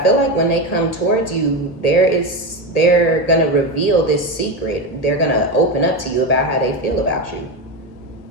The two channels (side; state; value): right; late; 1.8 ms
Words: like when they come towards you, they're going to reveal this secret. They're going to open up to you about how they feel about you.